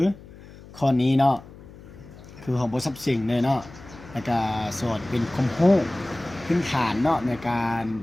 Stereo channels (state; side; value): noise; left; hum, 19 dB below the sound